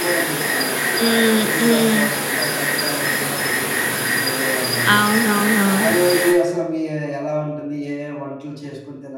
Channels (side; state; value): both; identical; correlation 1.00